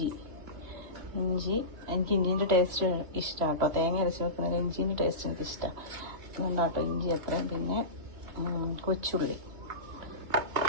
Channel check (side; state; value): left; late; 2.6 ms